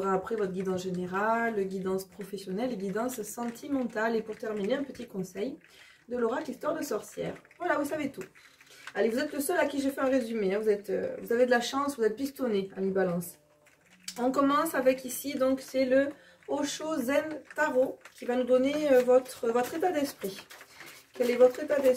après votre guidance générale, guidance professionnelle et guidance sentimentale. Et pour terminer, un petit conseil de l'oracle Histoire de sorcière. Voilà, vous savez tout. Allez, vous êtes le seul à qui j'ai fait un résumé. Hein. Vous avez de la chance, vous êtes pistonné, amis balance. On commence avec ici, donc c'est le Osho Zen Tarot qui va nous donner votre état d'esprit. Quel est votre état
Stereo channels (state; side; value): identical; both; correlation 1.00